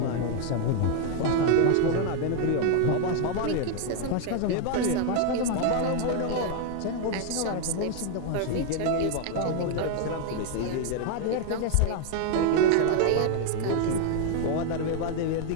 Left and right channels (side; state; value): both; different; correlation 0.00